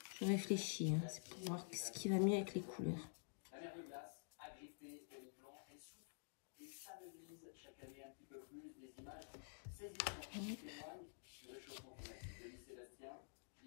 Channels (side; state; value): right; silent; digital silence